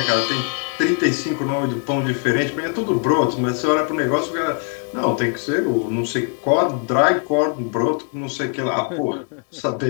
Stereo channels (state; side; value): quieter; right; 40.0 dB